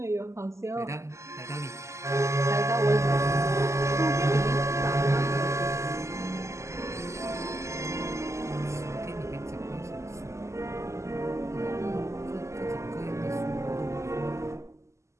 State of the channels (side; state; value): left; late; 0.14 ms